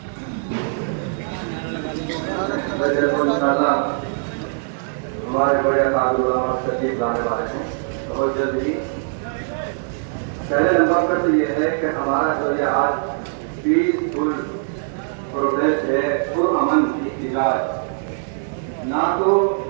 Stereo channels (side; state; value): left; silent; digital silence